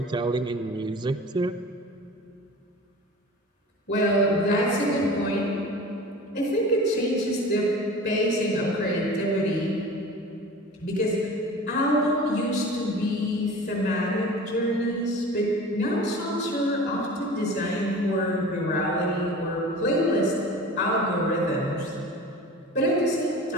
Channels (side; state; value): both; normal; correlation 0.38